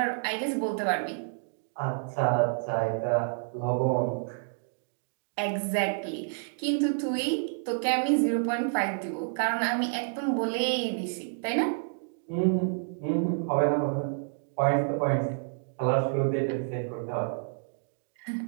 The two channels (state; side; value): silent; left; digital silence